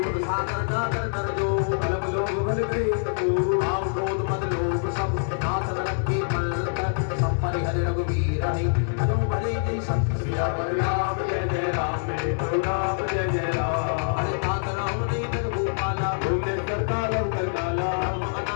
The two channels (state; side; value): silent; right; digital silence